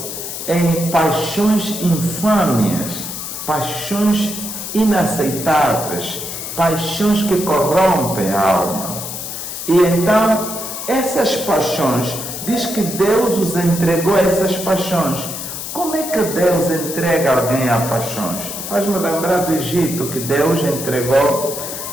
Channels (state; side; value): noise; left; hiss, 7 dB below the sound